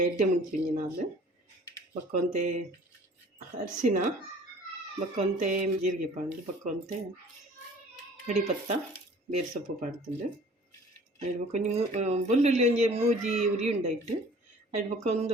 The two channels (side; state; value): both; normal; correlation 0.50